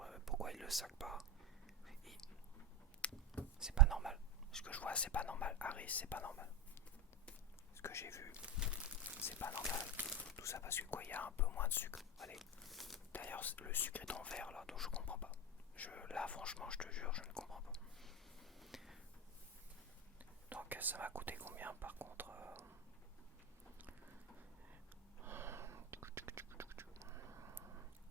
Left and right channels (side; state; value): both; normal; correlation 0.14